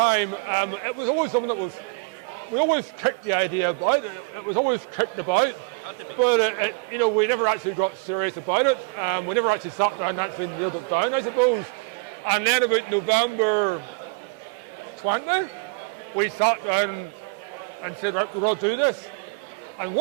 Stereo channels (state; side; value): quieter; left; 33.3 dB